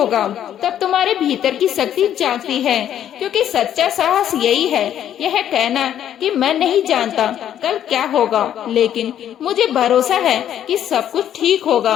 तब तुम्हारे भीतर की शक्ति जागती है। क्योंकि सच्चा साहस यही है, यह कहना कि मैं नहीं जानता कल क्या होगा, लेकिन मुझे भरोसा है कि सब कुछ ठीक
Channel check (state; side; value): quieter; right; 10.5 dB